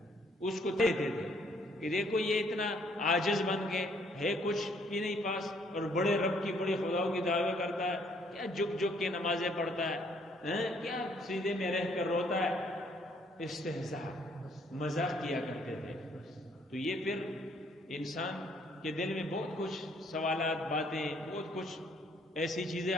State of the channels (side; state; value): both; normal; correlation 0.65